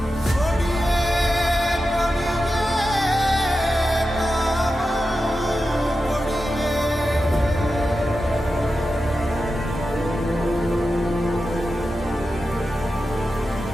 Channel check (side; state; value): both; normal; correlation 0.91